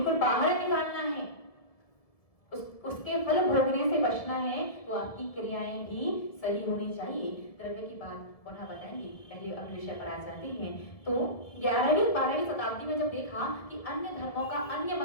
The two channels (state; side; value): late; right; 1.7 ms